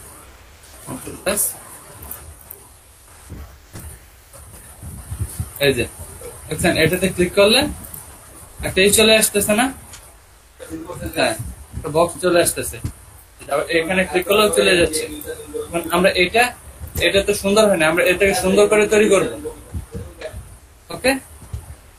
এই যে দেখছেন, এটাতে ক্লিক করলে একটা চলে আসতেছে না? হ্যাঁ, একটা বক্স চলে আসতেছে। আবার এখানে ক্লিক করলেও চলে যাচ্ছে। আমরা এটা তো সুন্দর হয় না, আমরা এটাকে সুন্দর করে তৈরি করব। ওকে,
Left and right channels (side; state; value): both; identical; correlation 1.00